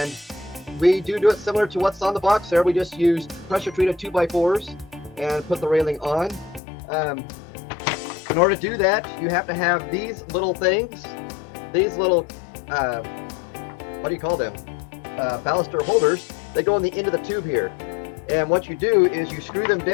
we do it similar to what's on the box there. We just use pressure treated 2x4s and put the railing on. In order to do that, you have to have these little things, these little, what do you call them? Baluster holders. They go on the end of the tube here. And what you do is you screw them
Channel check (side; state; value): right; drops out; at 6.6 s